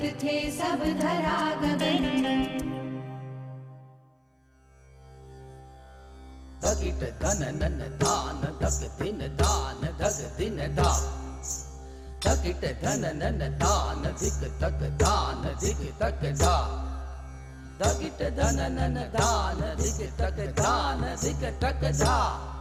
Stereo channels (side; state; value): both; identical; correlation 1.00